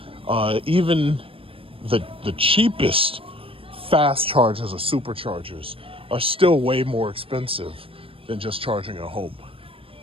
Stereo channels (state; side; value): late; left; 0.27 ms